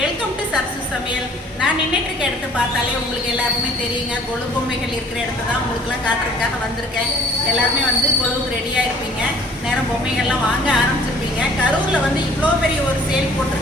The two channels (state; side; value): normal; both; correlation 0.54